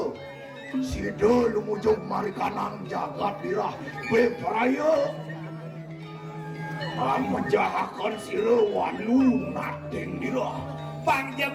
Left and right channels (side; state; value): both; identical; correlation 1.00